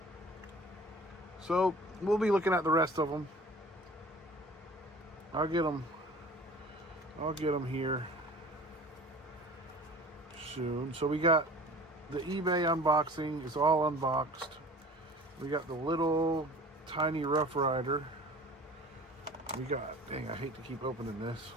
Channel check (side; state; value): both; normal; correlation 0.43